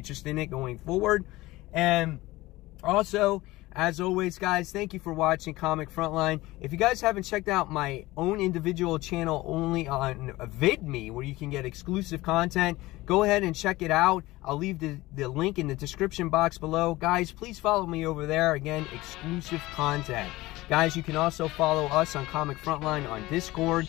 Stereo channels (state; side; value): quieter; right; 19.2 dB